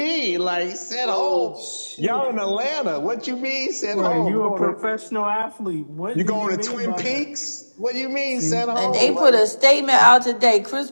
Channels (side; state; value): both; inverted; correlation -1.00